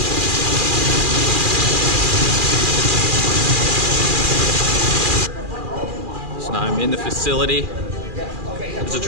I'm in the facility. There's a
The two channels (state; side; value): late; left; 2.4 ms